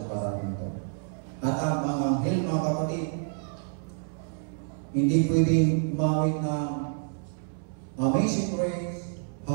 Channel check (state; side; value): silent; left; 58 dB below the other